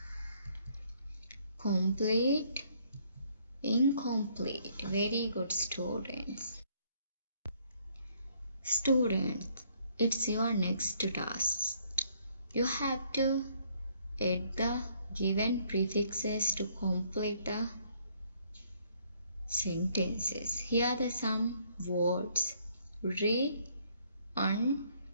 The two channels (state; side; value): inverted; both; correlation -0.66